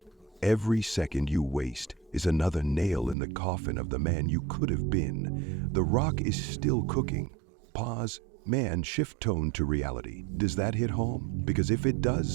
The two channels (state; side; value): drops out; left; at 3.2 s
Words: Every second you waste is another nail in the coffin of the man you could have been. The Rock is still cooking. Pause. Man, shift tone to reality. Does that hit home? Because if it